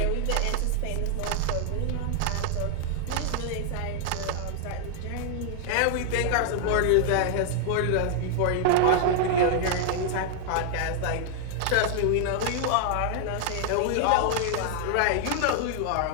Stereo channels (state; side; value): different; both; correlation 0.00